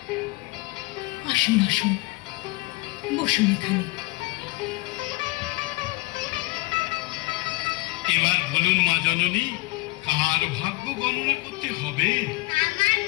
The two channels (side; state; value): right; quieter; 22.9 dB